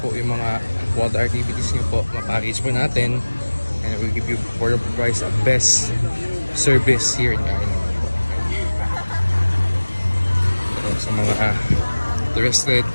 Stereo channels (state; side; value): inverted; both; correlation -1.00